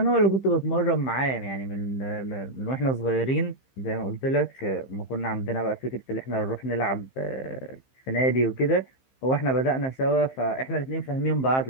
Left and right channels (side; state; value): right; late; 15 ms